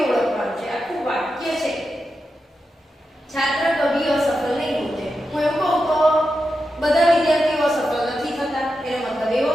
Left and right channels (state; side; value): normal; both; correlation 0.89